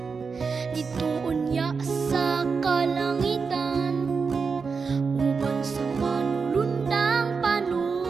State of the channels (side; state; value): left; quieter; 5.1 dB